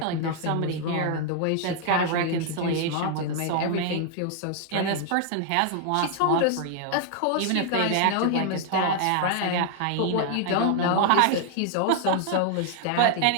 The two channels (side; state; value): both; different; correlation 0.00